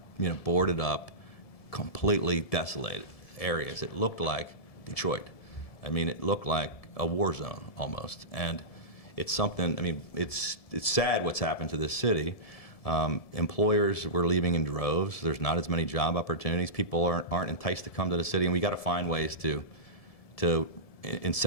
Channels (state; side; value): late; right; 1.7 ms